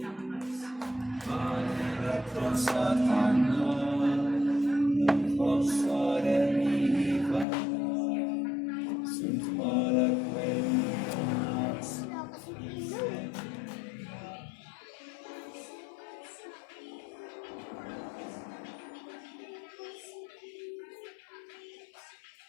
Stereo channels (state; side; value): drops out; right; at 7.5 s